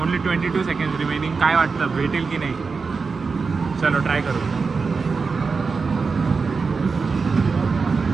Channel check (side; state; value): left; quieter; 4.7 dB